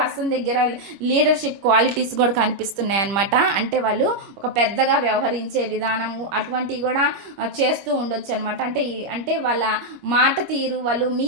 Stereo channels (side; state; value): left; late; 25 ms